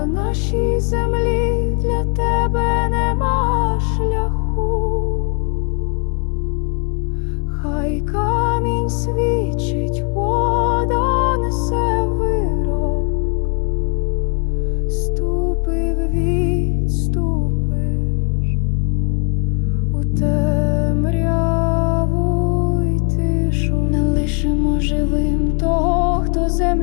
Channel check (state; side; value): quieter; right; 38.7 dB